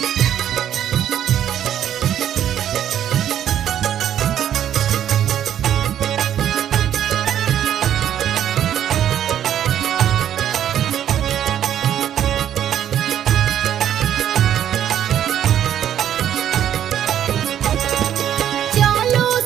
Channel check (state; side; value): quieter; left; 10.4 dB